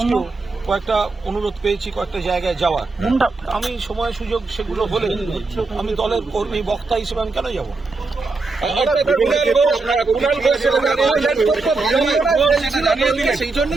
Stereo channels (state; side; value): quieter; left; 3.7 dB